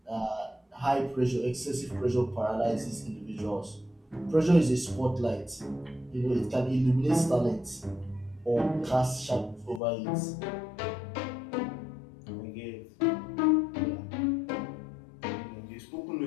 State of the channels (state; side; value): drops out; right; at 9.8 s